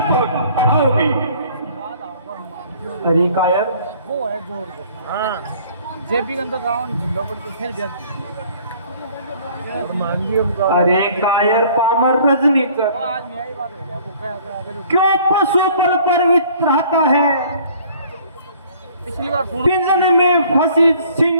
आओगी। अरे कायर, वो है जोर को। हाँ जेपी के अंदर राउंड झुंडा पड़ के फिर जाती अरे कायर पामर रजनी कर, आज मेरी बात हो गया वो क्या क्यों पशु पर परिवित रहता है। पिछली बार फोन पिंजरे में फंसी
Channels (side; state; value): both; inverted; correlation -0.55